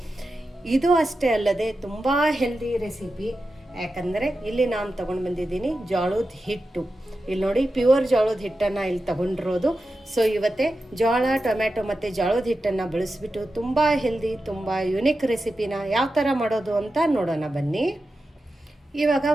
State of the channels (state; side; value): normal; both; correlation 0.91